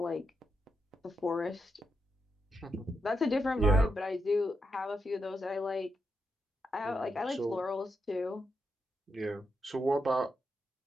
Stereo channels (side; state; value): both; normal; correlation 0.83